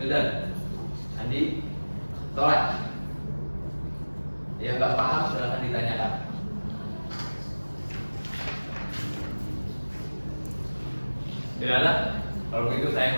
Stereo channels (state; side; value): inverted; both; correlation -1.00